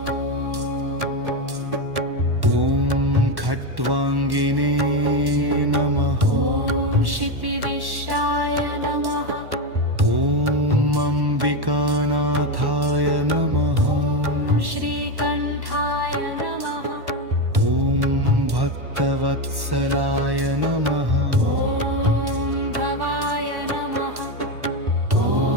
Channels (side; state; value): left; late; 1.1 ms